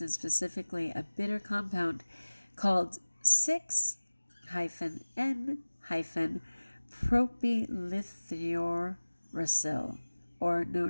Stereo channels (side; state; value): both; inverted; correlation -1.00